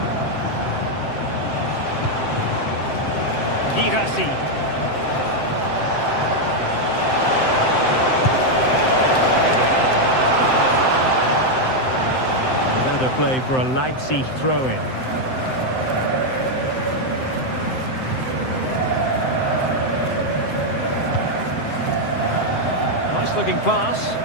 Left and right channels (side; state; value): right; late; 7.7 ms